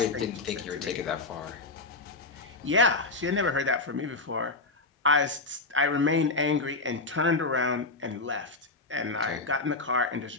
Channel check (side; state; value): right; quieter; 3.3 dB